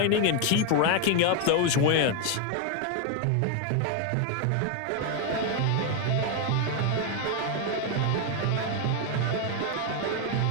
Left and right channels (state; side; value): different; both; correlation 0.01